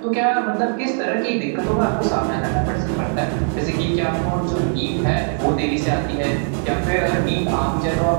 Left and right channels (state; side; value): silent; left; 65 dB below the other